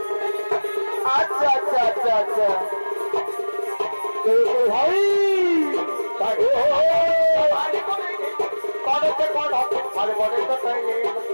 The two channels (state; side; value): inverted; both; correlation -1.00